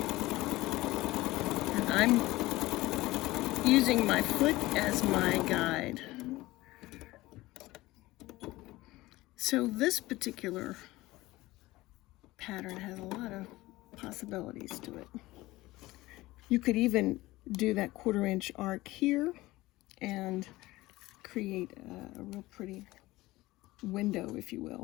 I'm using my foot as my guide. So this particular pattern has a lot of possibilities to it. You could even do that 1/4 inch arc here and create a real pretty window, if you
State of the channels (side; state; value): right; quieter; 18.8 dB